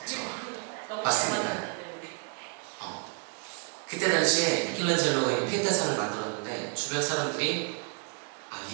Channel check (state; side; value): quieter; left; 39.5 dB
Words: 너무 맞습니다. 잘 만들었기 때문에. 그때 당시에 미켈란젤로가 이 피에테상을 만들었는데 주변 사람들이